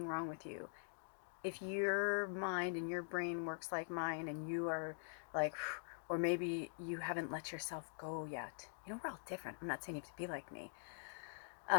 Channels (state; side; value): silent; right; digital silence